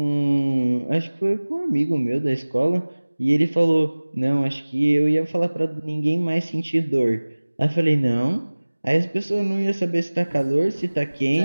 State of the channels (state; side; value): inverted; both; correlation -1.00